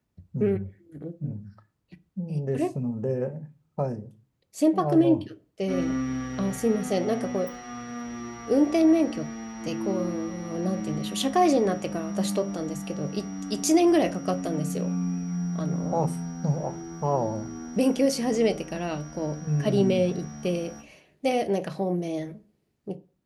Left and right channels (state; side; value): identical; both; correlation 1.00